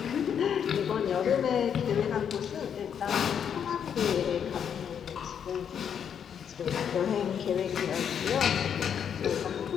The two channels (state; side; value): quieter; right; 8.1 dB